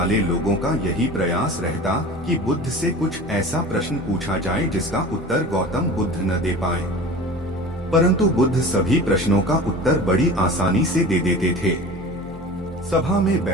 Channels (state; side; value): normal; both; correlation 0.37